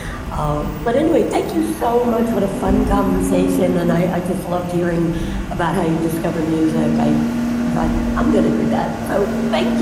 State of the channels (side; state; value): both; identical; correlation 1.00